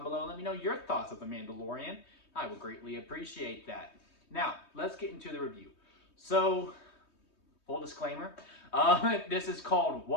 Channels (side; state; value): right; late; 3.2 ms